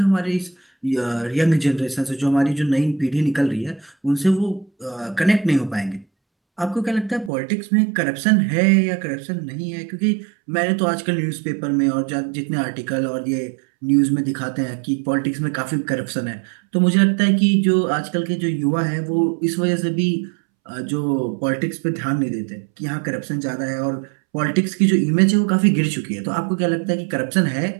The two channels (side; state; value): left; drops out; at 7.3 s